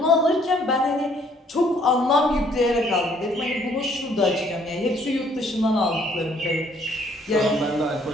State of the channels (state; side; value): normal; both; correlation 0.63